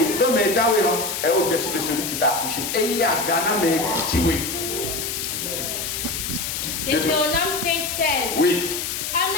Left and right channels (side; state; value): left; noise; hiss, 4 dB below the sound